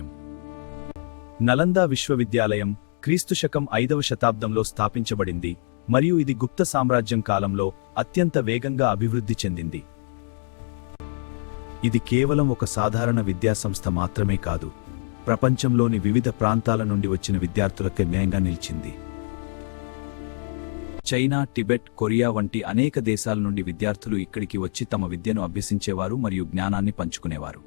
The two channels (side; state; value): right; silent; digital silence